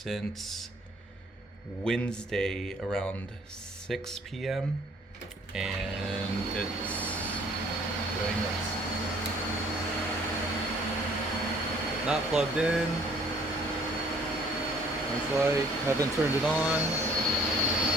Wednesday around 6 p.m. and it's going nuts. Not plugged in. Lights light. Haven't turned it on.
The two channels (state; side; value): normal; both; correlation 0.58